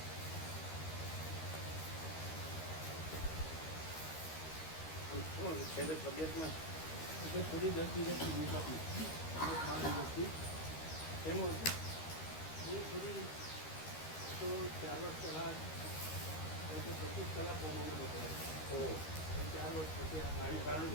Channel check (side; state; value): right; late; 13 ms